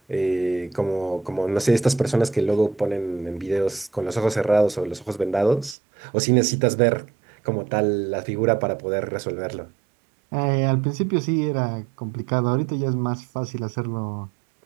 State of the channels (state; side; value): drops out; left; at 5.8 s